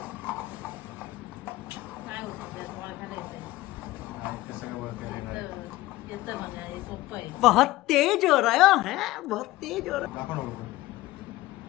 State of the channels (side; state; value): right; quieter; 17.7 dB